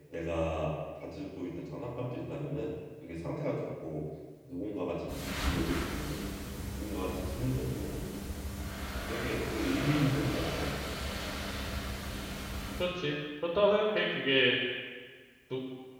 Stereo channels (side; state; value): both; identical; correlation 1.00